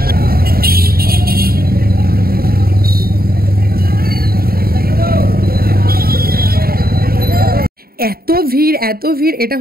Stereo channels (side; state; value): left; late; 0.44 ms